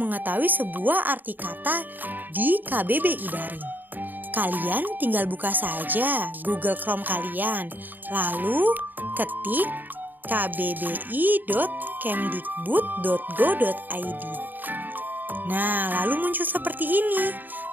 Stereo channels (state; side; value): late; left; 0.089 ms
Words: sebuah arti kata di KBBI Daring. Kalian tinggal buka saja Google Chrome kalian, lalu ketik kbbi.kemdikbud.go.id. Nah, lalu muncul seperti ini.